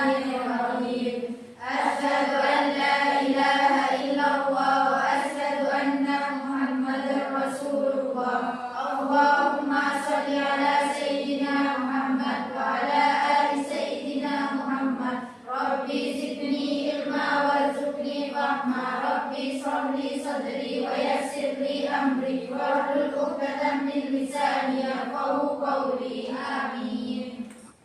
Asyhadu an la ilaha illallah wa asyhadu anna Muhammadar Rasulullah. Allahumma shalli ala sayyidina Muhammad wa ala ali sayyidina Muhammad. Rabbi zidni ilma warzuqni fahma. Rabbi shrahli sadri wa yassirli amri wahlul 'uqdatam min lisani yafqahu qawli. Amin.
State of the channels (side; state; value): both; identical; correlation 1.00